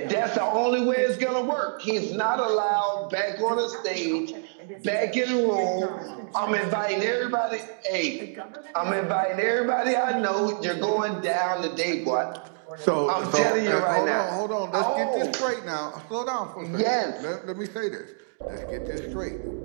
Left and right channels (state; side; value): silent; left; digital silence